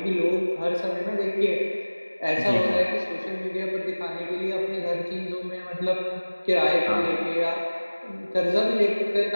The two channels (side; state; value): both; inverted; correlation -1.00